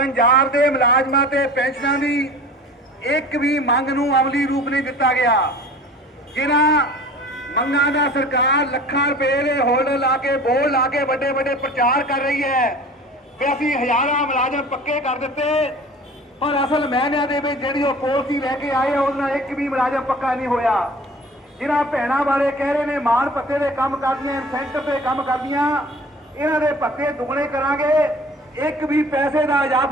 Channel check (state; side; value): normal; both; correlation 0.43